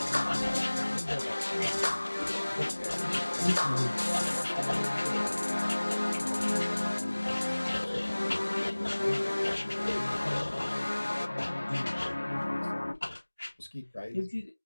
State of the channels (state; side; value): inverted; both; correlation -1.00